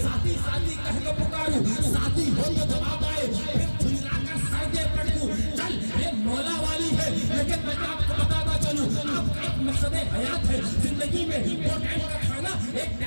ساتھی ساتھی کہہ کے پکاروں, ساتھی ہو تو جواب آئے. پھر جھلا کر سر دے پڑھوں, چل یہ مولا والی ہے. لیکن میں آپ کو بتاتا چلوں, آپ کا ایک مقصد حیات ہے زندگی میں. دو ٹائم کا کھانا, ایک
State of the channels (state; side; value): inverted; both; correlation -1.00